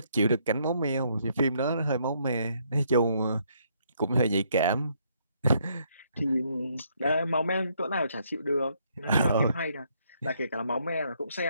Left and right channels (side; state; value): both; inverted; correlation -0.71